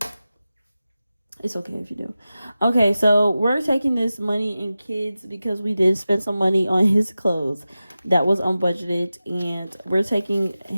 It's okay if you do. Okay, so we're taking this money in kids because we did spend some money on his clothes that was unbudgeted, and we're taking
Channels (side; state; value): both; inverted; correlation -0.94